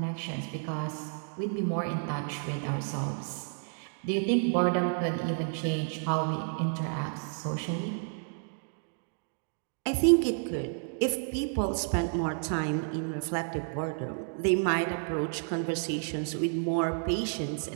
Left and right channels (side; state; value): left; silent; 57 dB below the other